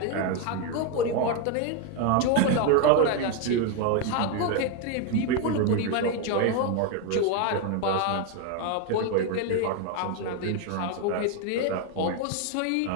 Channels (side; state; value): both; different; correlation 0.01